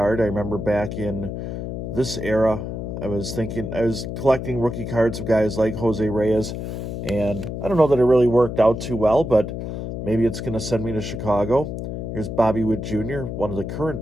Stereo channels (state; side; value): noise; left; hum, 5 dB below the sound